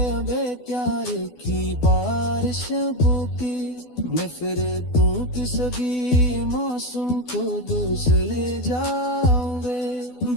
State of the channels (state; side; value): late; right; 12 ms